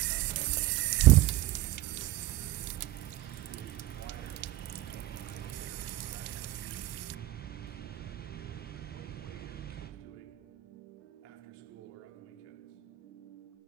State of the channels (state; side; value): quieter; left; 16.3 dB